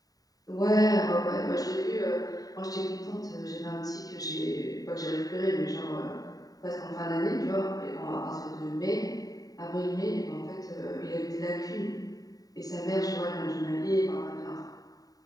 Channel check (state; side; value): late; right; 0.18 ms